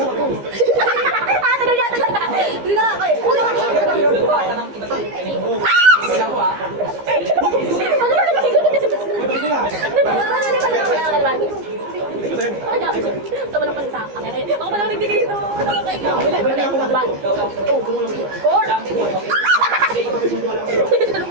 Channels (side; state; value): left; late; 15 ms